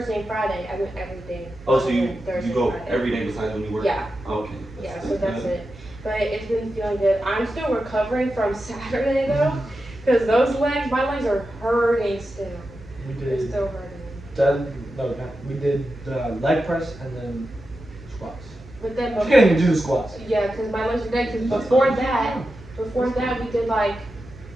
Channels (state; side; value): noise; right; hum, 19 dB below the sound